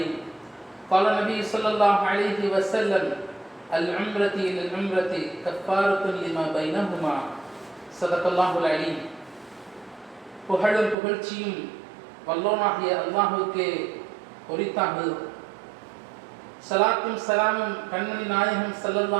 قال النبي صلى الله عليه وسلم العمرة إلى العمرة كفارة لما بينهما صدق الله العليم புகழும் புகழ்ச்சியும் வல்லோனாகிய அல்லாஹுக்கே உரித்தாகுது. சலாத்தும் சலாமும் கண்மணி நாயகம்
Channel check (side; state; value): left; drops out; at 11.0 s